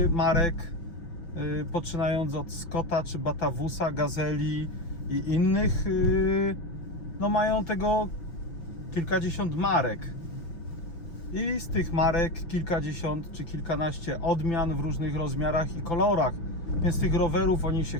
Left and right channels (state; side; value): late; right; 5.9 ms